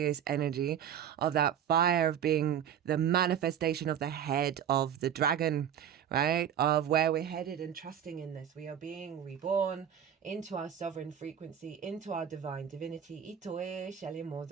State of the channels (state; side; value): quieter; left; 9.2 dB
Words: energy of that fire of being the manifestation of the head of the dragon, right? Of where we're headed and trusting in this. We are being reborn into our sovereign frequency, into our divine divinity. Itoe shele